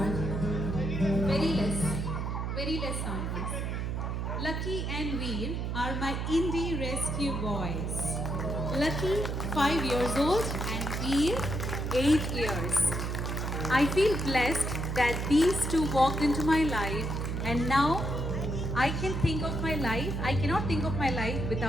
Very less sound, please. Lucky and Veer are my indie rescue boys. Lucky, 5 years old, and Veer, 8 years. I feel blessed that these two walked into my life, and now I can think of my life. I cannot think of my life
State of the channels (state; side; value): noise; right; hum, 2 dB below the sound